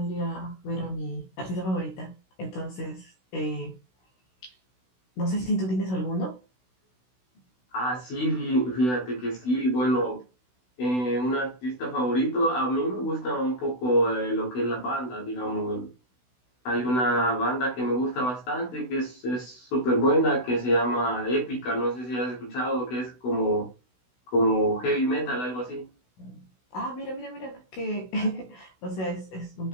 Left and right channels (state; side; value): late; right; 16 ms